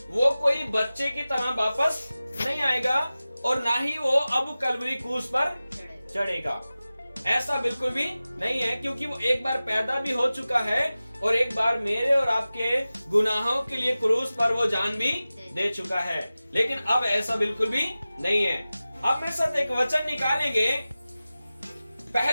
वो कोई बच्चे की तरह वापस नहीं आएगा, और ना ही वो अब कलवरी क्रूस पर चढ़ेगा। ऐसा बिल्कुल भी नहीं है, क्योंकि वो एक बार पैदा भी हो चुका है, और एक बार मेरे और आपके गुनाहों के लिए क्रूस पर वो जान भी दे चुका है। लेकिन अब ऐसा बिल्कुल भी नहीं है। अब मेरे साथ एक वचन निकालेंगे,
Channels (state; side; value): inverted; both; correlation -0.96